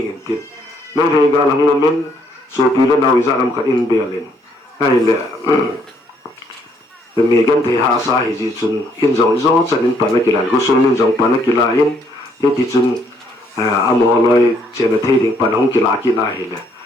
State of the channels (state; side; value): normal; both; correlation 0.68